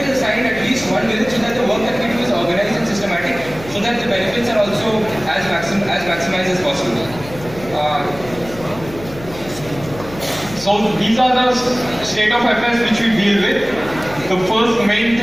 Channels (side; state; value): left; noise; hum, 16 dB below the sound